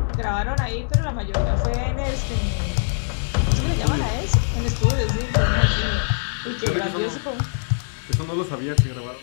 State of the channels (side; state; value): right; silent; digital silence